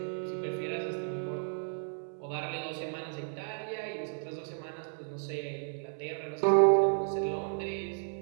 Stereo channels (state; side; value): silent; left; 56 dB below the other